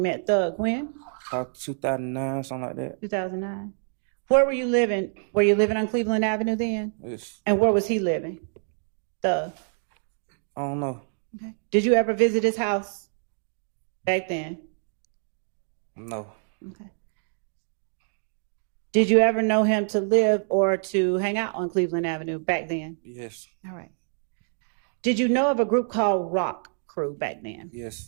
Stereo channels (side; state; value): left; silent; 61 dB below the other